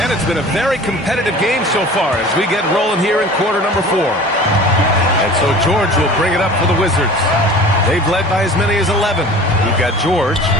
And it's been a very competitive game so far as we get rolling here in quarter number 4. And so George will bring it up for the Wizards. They've led by as many as 11. We've got George,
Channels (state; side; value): normal; both; correlation 0.41